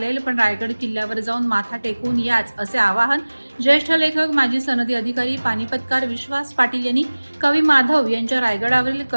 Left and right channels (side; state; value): both; inverted; correlation -1.00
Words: पण रायगड किल्ल्यावर जाऊन माथा टेकून याच, असे आवाहन ज्येष्ठ लेखक माजी सनदी अधिकारी पानिपतकार विश्वास पाटील यांनी कवी माधव यांच्या रायगडावरील